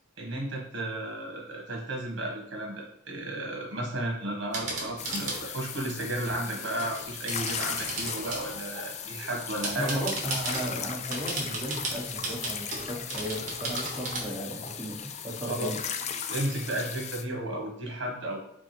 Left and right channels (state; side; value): normal; both; correlation 0.23